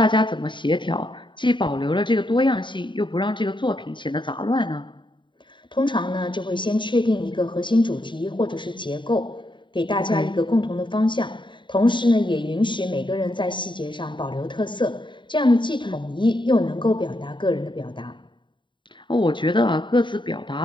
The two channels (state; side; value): late; right; 0.23 ms